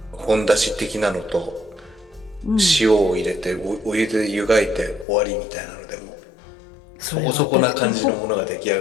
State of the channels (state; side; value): drops out; right; at 5.1 s